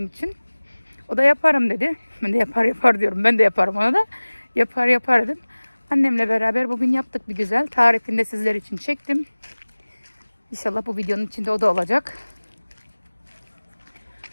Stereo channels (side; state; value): both; inverted; correlation -1.00